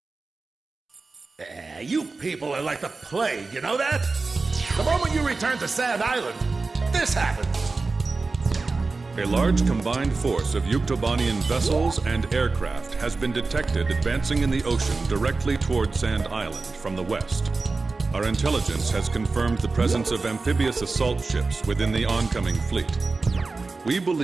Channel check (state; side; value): quieter; left; 3.8 dB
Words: You people are like the plague, you know that? The moment you return to Sand Island, this happens. A large combined force of Yuktobanian vessels and aircraft has been detected advancing in the ocean directly toward Sand Island from the west. Our intelligence has confirmed the presence of amphibious assault ships within the oncoming fleet. We